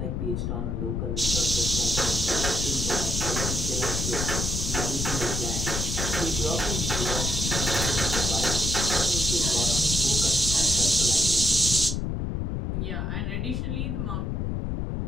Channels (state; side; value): noise; left; rumble, 1 dB below the sound